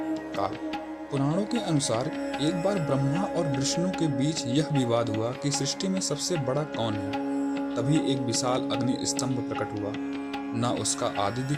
काल। पुराणों के अनुसार एक बार ब्रह्मा और विष्णु के बीच यह विवाद हुआ कि सृष्टि में सबसे बड़ा कौन है। तभी एक विशाल अग्नि स्तंभ प्रकट हुआ। न उसका आदि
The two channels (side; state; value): both; identical; correlation 1.00